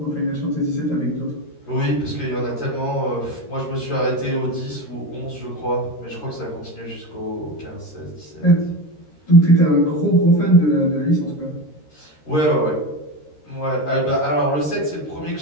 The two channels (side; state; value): right; late; 13 ms